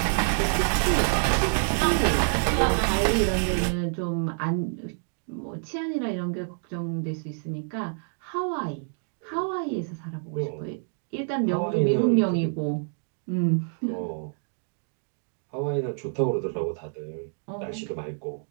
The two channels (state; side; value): silent; left; digital silence